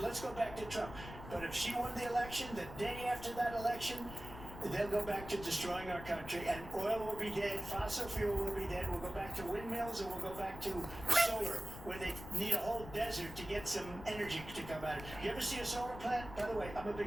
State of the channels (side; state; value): left; noise; rumble, 12 dB below the sound